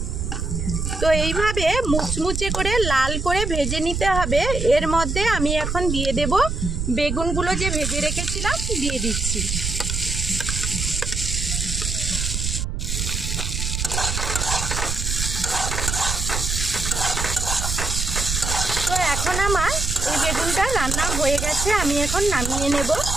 তো এইভাবে মুচমুচে করে লাল করে ভেজে নিতে হবে। এর মধ্যে আমি এখন দিয়ে দেব বেগুনগুলো যে ভেজে রেখেছিলাম, দিয়ে দিচ্ছি। তো এখন আমার এই বেগুনটা রান্না হয়ে গেছে, আমি এখন নামিয়ে নেব।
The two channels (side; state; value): right; noise; rumble, 2 dB below the sound